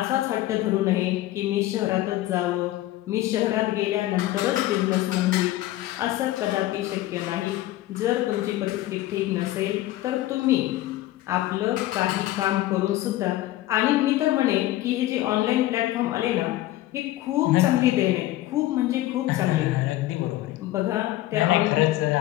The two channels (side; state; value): right; quieter; 15.7 dB